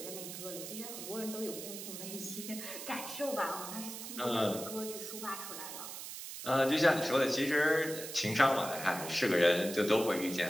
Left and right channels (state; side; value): noise; right; hiss, 9 dB below the sound